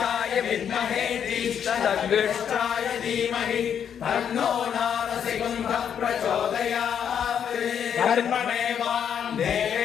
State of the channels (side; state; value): right; quieter; 8.3 dB